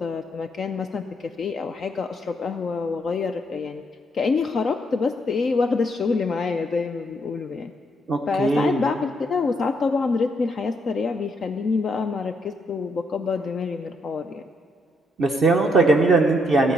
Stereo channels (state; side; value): normal; both; correlation 0.75